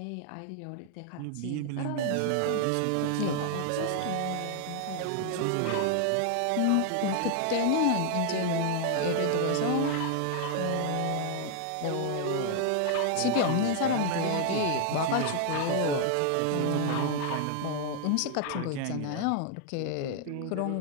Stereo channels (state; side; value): different; both; correlation 0.00